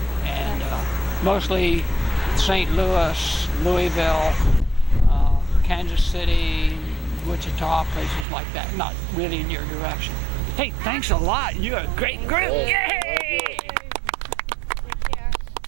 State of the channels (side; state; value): left; drops out; at 8.2 s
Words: And mostly St. Louis, Louisville, Kansas City, Wichita, places like that. Not really in your direction. Hey, thanks a lot. You're a great group. Yay!